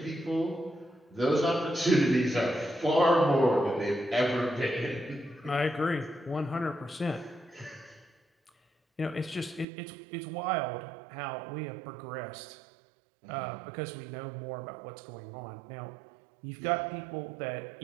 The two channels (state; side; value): drops out; left; at 9.7 s